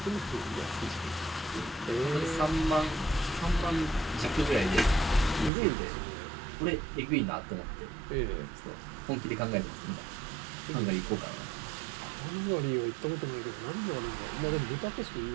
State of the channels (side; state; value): left; drops out; at 5.5 s